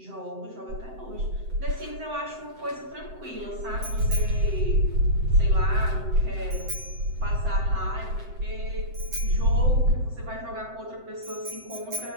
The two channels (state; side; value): late; left; 7.8 ms